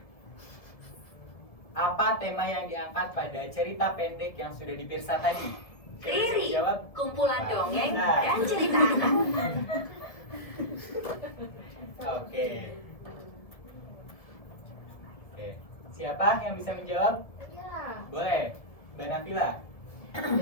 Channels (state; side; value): late; right; 1.7 ms